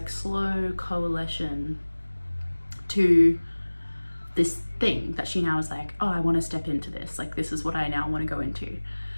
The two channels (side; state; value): both; inverted; correlation -1.00